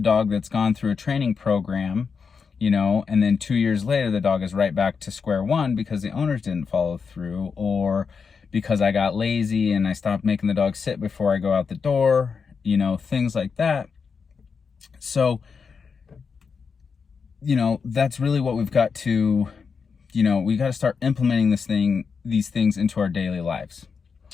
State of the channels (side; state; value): right; quieter; 5.6 dB